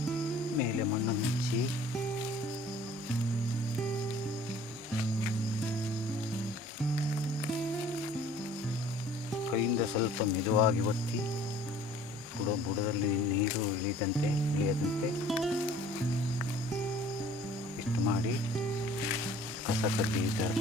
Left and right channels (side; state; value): both; normal; correlation 0.52